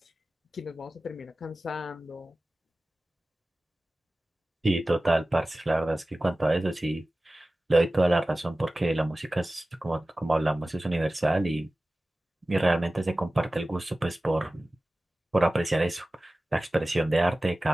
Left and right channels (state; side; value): normal; both; correlation 0.97